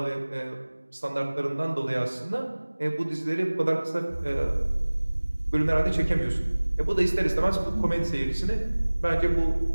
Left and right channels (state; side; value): inverted; both; correlation -1.00